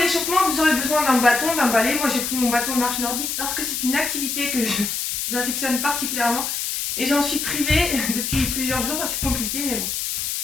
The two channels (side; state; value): left; noise; hiss, 2 dB below the sound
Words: vous aurez besoin d'un bâton, d'un balai. Moi j'ai pris mon bâton de marche nordique parce que c'est une activité que j'affectionne particulièrement et j'en suis privée depuis plusieurs jours, c'est compliqué mais bon.